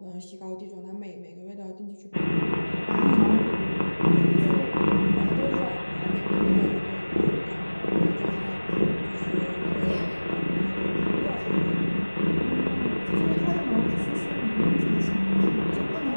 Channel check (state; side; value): inverted; both; correlation -1.00